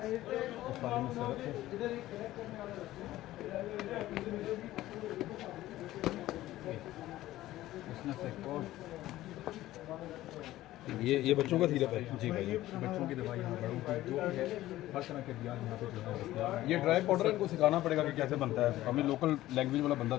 इस वाले में सरक है। ये बच्चों का सिरप है जी भाई, बच्चों की दवाई यहाँ बड़ों की जो भी है हर तरह के दिया यहाँ पे जो है। ये ड्राई पाउडर इनको सिखाना पड़ेगा कि कैसे बनता है, हमें लोकल लैंग्वेज वाला बंदा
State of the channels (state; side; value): quieter; right; 15.4 dB